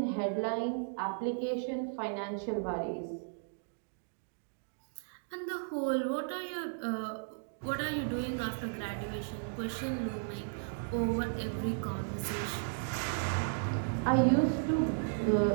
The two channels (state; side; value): silent; left; digital silence